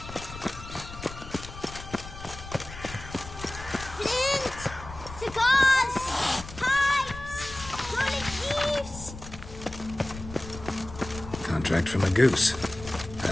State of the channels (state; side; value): noise; left; rumble, 13 dB below the sound